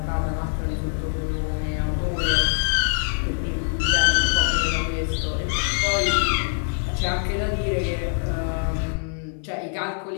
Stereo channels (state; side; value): silent; right; 58 dB below the other